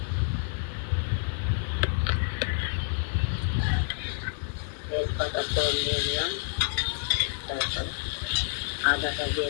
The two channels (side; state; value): right; silent; digital silence